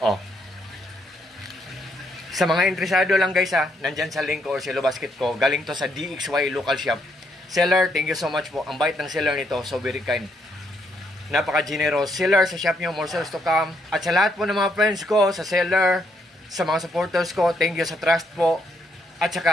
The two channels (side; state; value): both; normal; correlation 0.75